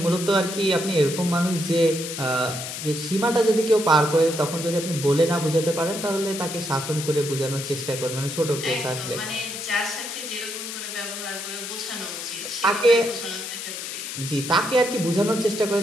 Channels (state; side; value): noise; left; hiss, 7 dB below the sound